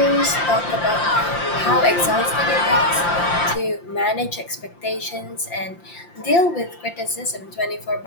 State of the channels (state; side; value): late; right; 5.8 ms